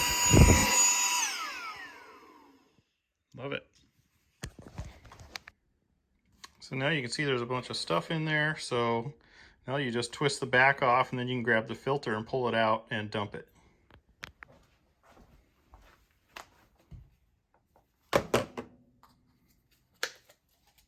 Love it. So now you can see there's a bunch of stuff in there. So now you just twist the back off and then you can grab the filter and pull it out and dump it.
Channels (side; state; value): both; identical; correlation 1.00